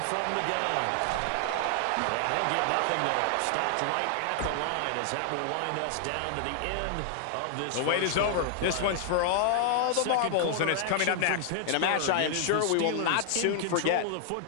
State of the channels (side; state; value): both; different; correlation 0.00